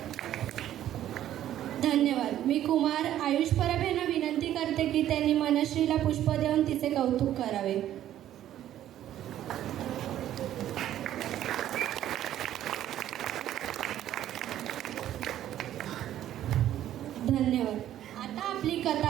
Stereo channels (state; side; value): quieter; left; 12.0 dB